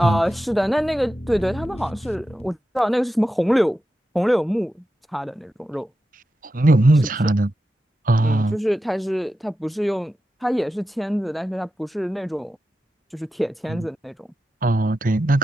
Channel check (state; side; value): normal; both; correlation 0.90